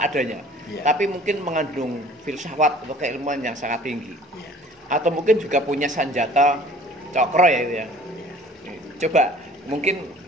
adanya, iya. Tapi mungkin mengandung filsafat atau keilmuan yang sangat tinggi, iya. Atau mungkin juga punya senjata cokro ya itu ya. Iya. Coba mungkin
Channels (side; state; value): both; normal; correlation 0.50